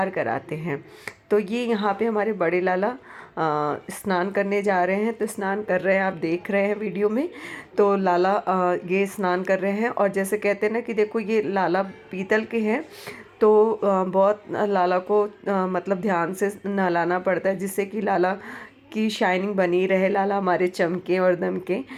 कराते हैं। तो ये यहाँ पे हमारे बड़े लाला स्नान करने जा रहे हैं। तो स्नान कर रहे हैं, आप देख रहे हैं वीडियो में। तो लाला ये स्नान कर रहे हैं और जैसे कहते हैं ना कि देखो ये लाला पीतल के हैं, तो बहुत लाला को मतलब ध्यान से नहलाना पड़ता है, जिससे कि लाला की शाइनिंग बनी रहे, लाला हमारे चमके और दमके।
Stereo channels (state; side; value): identical; both; correlation 1.00